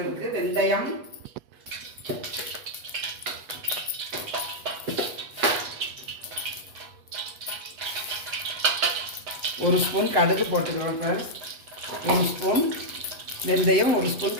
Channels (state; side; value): late; left; 8.2 ms